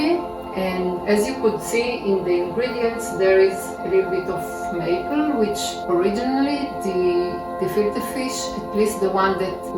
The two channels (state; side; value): noise; right; hum, 28 dB below the sound